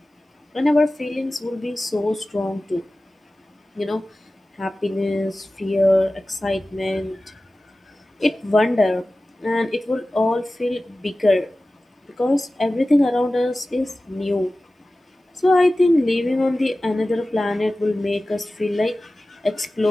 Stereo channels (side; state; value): both; normal; correlation 0.96